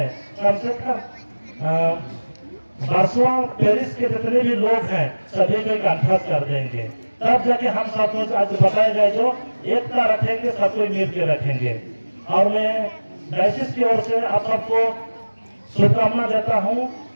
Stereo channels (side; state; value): both; inverted; correlation -1.00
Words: कम से कम बारसवा पेरिस के जितने भी लोग हैं सभी को कंठस्थ कर देंगे, तब जाके हम सब कुछ आज बताए गए जो एकता रखेंगे, सबको मिल के रखेंगे। और मैं डायसिस की ओर से आप सबको शुभकामना देता हूँ